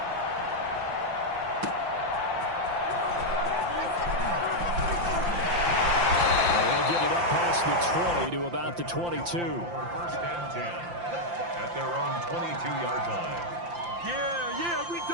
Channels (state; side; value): late; left; 5.8 ms